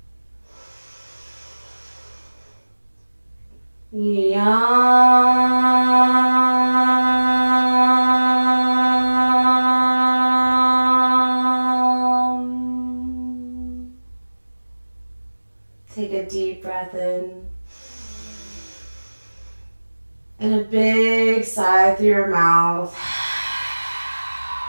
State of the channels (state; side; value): inverted; both; correlation -1.00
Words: Take a deep breath in. And a big sigh through your mouth.